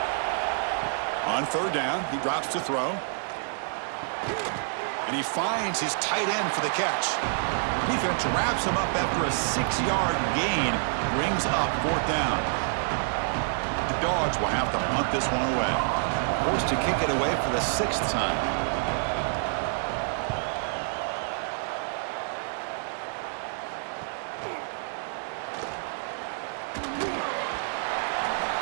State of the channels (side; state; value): left; silent; digital silence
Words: On third down, he drops to throw. And he finds his tight end for the catch. Defense wraps him up after a 6-yard gain, brings up fourth down. The Dogs will have to punt this one away. Forced to kick it away for the 6th time.